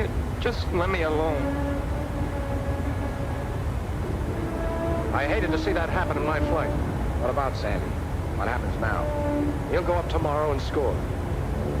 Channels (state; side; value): identical; both; correlation 1.00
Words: Just let me alone. I hated to see that happen in my flight. What about Sandy? What happens now? He'll go up tomorrow and score.